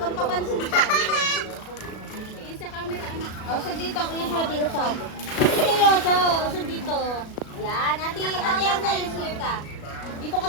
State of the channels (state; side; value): late; right; 37 ms